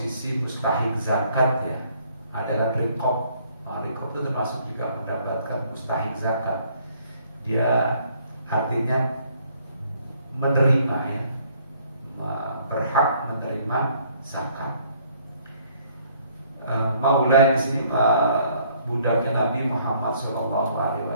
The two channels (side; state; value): both; inverted; correlation -0.63